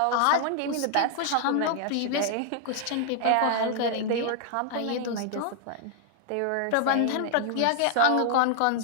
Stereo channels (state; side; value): different; both; correlation -0.01